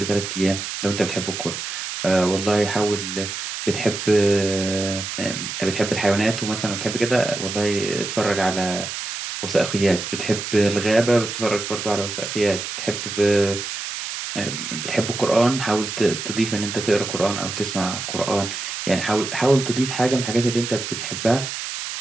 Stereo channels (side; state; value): right; noise; hiss, 6 dB below the sound